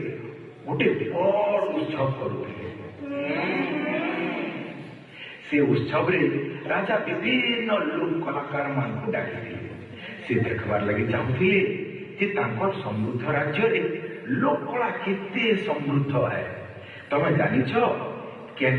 ଗୋଟେ ବଡ଼ ଉତ୍ସବ କରୁଥିଲେ ସେ ଉତ୍ସବରେ ରାଜା ବିଭିନ୍ନ ଲୋକ କଳାକାରମାନଙ୍କୁ ଡାକିଥିଲେ ସେ ଦେଖିବାର ଲାଗି ଚାହୁଁଥିଲେ ଯେ ତାଙ୍କର ସମୃଦ୍ଧ ରାଜ୍ୟରେ ଲୋକକଳା କେତେ ସମୃଦ୍ଧ ହେ ତମେ ଜାଣିଛ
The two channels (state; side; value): identical; both; correlation 1.00